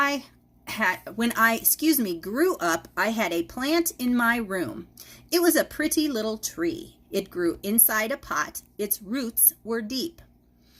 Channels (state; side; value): identical; both; correlation 1.00